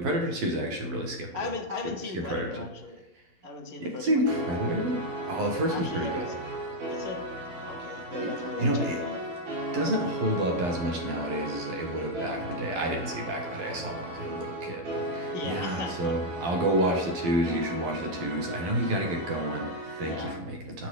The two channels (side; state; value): left; late; 12 ms